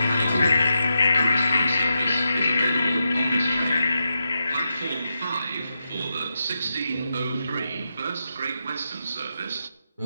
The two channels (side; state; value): both; inverted; correlation -0.87